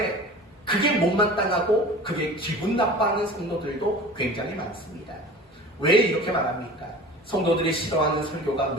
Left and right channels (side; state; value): both; normal; correlation 0.39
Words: 그게 못마땅하고 그게 기분 나빠하는 성도들도 굉장히 많습니다. 왜 이렇게 말합니까? 성도들이 싫어하는 설교가